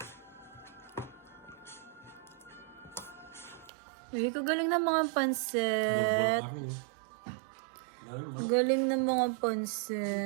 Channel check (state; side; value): drops out; left; at 3.7 s